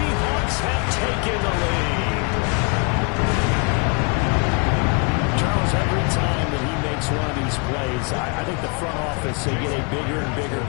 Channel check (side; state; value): right; quieter; 35.4 dB